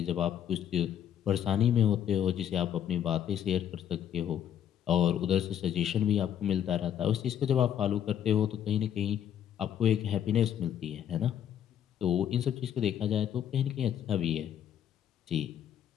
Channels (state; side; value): quieter; right; 9.8 dB